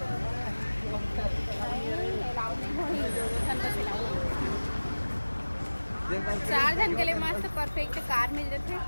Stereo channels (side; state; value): both; inverted; correlation -1.00